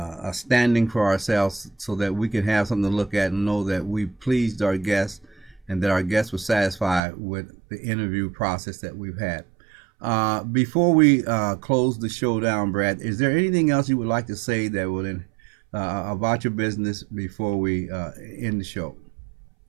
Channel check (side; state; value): left; drops out; at 7.0 s